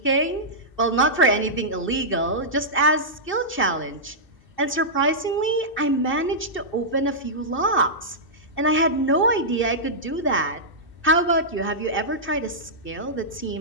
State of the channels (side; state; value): right; late; 2.6 ms